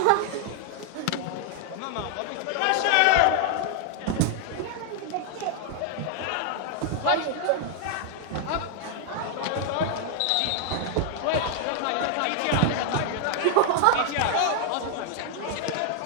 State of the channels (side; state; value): both; different; correlation 0.00